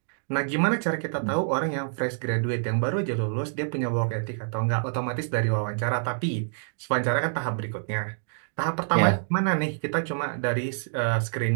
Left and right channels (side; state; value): left; silent; digital silence